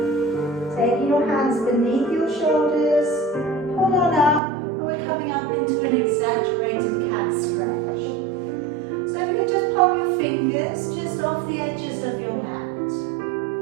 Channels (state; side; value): drops out; left; at 4.4 s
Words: Taking your hands beneath your shoulders, pull on up, and we're coming up into an exaggerated cat stretch. So if you can just pop your fingers just off the edges of your mat.